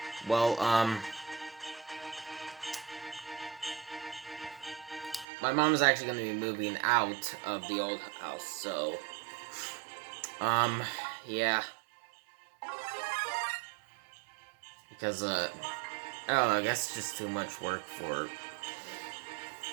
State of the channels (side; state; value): left; drops out; at 5.2 s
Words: well, my mom is actually gonna be moving out of the old house, so, yeah. Because, I don't know, I guess it's just too much work for